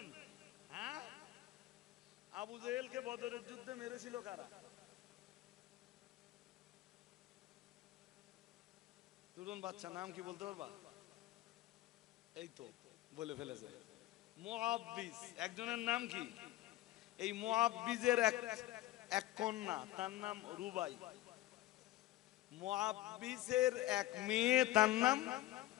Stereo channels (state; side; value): quieter; right; 16.4 dB